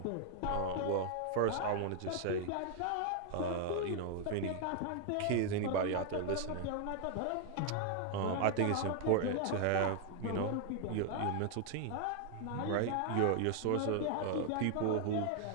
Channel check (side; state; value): both; different; correlation 0.00